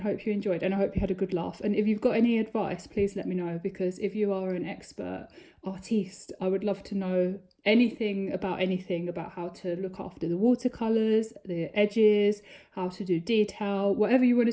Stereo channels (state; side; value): identical; both; correlation 1.00